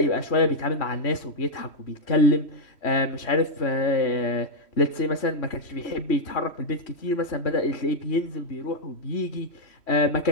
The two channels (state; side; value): late; right; 3.1 ms